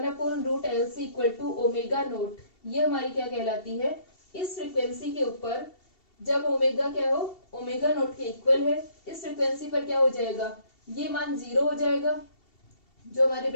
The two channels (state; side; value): late; right; 2.7 ms